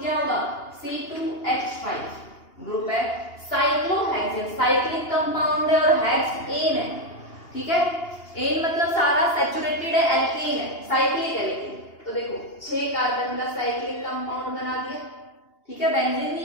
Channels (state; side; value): late; right; 2.8 ms